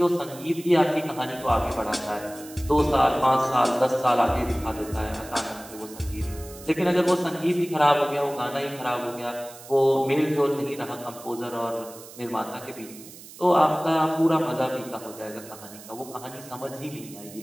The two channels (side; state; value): right; noise; hiss, 17 dB below the sound